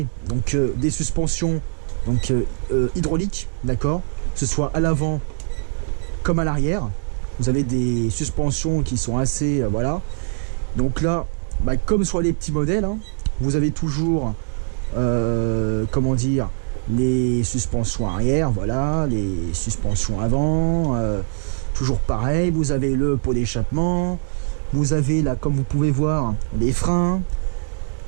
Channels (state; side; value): silent; left; digital silence